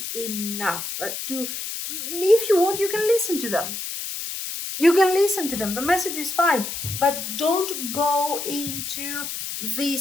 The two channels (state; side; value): noise; left; hiss, 6 dB below the sound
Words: enough to, if you want, you can listen to them. You can listen to them. The message is fine, but don't go into